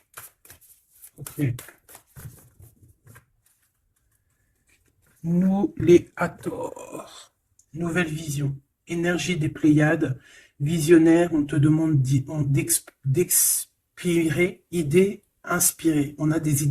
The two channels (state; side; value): identical; both; correlation 1.00